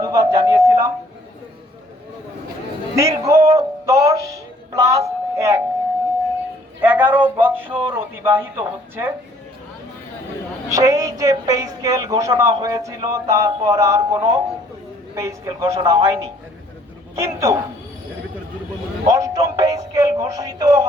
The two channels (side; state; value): both; normal; correlation 0.60